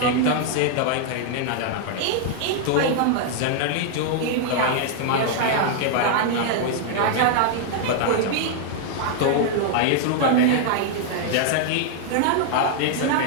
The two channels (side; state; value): both; different; correlation 0.00